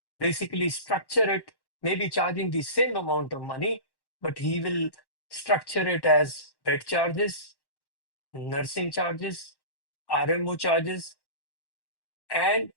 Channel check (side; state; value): right; late; 1.1 ms